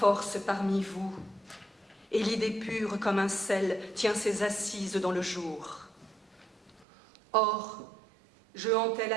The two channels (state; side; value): drops out; left; at 6.9 s